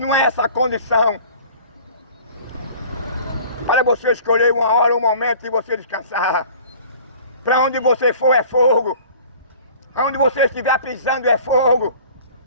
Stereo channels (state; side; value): inverted; both; correlation -0.47